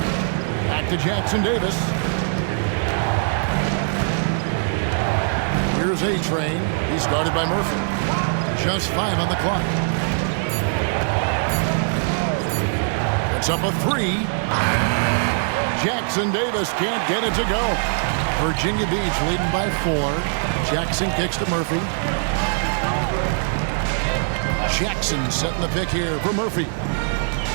Back to Jackson Davis. Here's A-Train. He's guarded by Murphy. Just 5 on the clock. It's up a 3. Jackson Davis can't get it to go. Virginia Beach leading by 4. Jackson kicks to Murphy. Jackson setting the pick here for Murphy.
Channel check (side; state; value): left; silent; digital silence